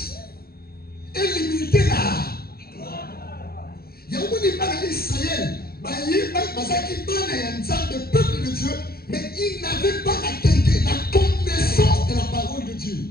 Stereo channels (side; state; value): right; late; 0.44 ms